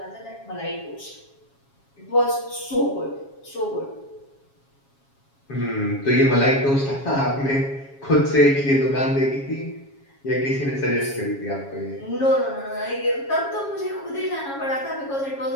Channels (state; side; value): late; right; 7.3 ms